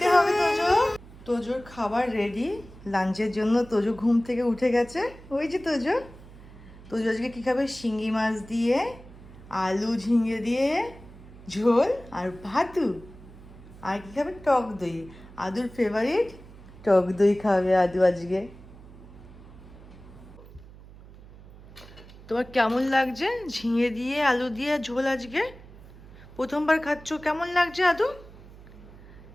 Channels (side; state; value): right; noise; hum, 19 dB below the sound